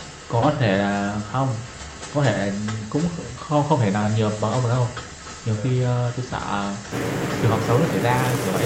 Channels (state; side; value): identical; both; correlation 1.00